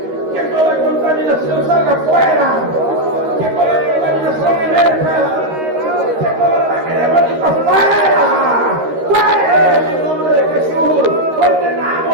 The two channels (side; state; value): left; late; 13 ms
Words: que toda contaminación salga fuera, que toda contaminación emerja, que todo ataque diabólico fuera, en el nombre de Jesús.